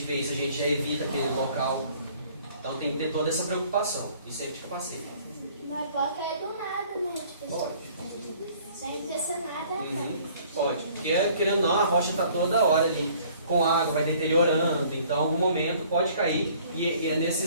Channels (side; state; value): both; inverted; correlation -0.56